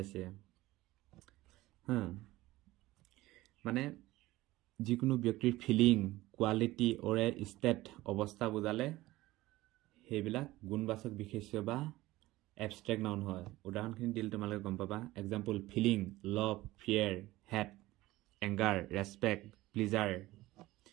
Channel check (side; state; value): left; quieter; 17.9 dB